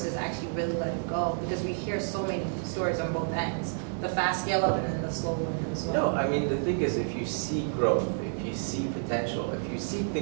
actually really let it go, because we hear so many stories on both ends. The fast scale up and then the slow one as well. No, I mean, the thing is, if you see growth, if you see potential, if you see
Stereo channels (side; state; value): left; silent; digital silence